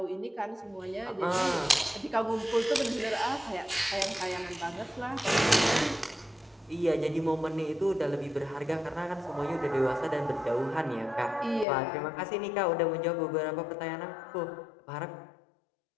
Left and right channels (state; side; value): drops out; right; at 11.7 s